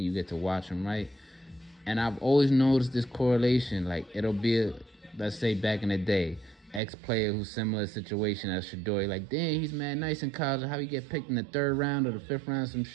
you get to watch them, right? And I've always noticed this correlation. Like, it'll be, let's say back in the day, ex-player who's similar situation as Shador. Like, damn, he's mad nice in college. How he get picked in the 3rd round or the 5th round, some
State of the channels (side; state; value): left; drops out; at 6.8 s